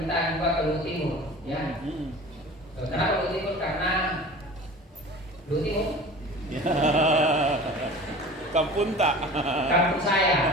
juga ke Luhut Timur, ya. Kenapa Luhut Timur? Karena Luhut Timur kampung tak? Kampung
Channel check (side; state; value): both; normal; correlation 0.40